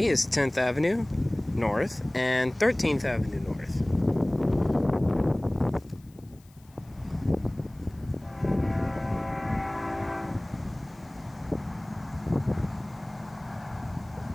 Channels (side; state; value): left; noise; hiss, 30 dB below the sound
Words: is 10th Avenue North and 13th Avenue North.